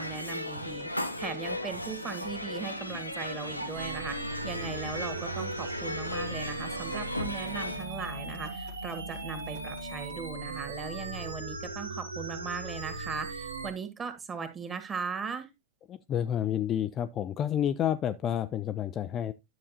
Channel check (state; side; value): normal; both; correlation 0.07